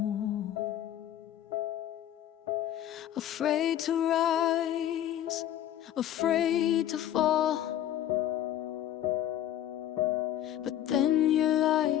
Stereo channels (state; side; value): quieter; right; 11.6 dB